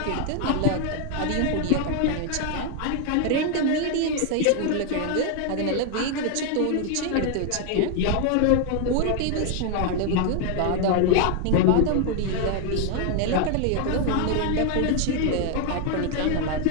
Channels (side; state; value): both; different; correlation 0.00